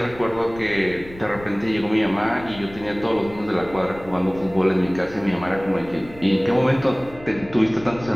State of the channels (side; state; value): left; noise; rumble, 18 dB below the sound